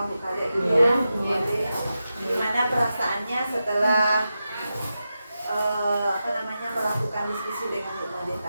Bu Kade dulu. Iya. Jadi gimana perasaannya setelah melakukan diskusi dengan Bu Made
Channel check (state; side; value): inverted; both; correlation -0.90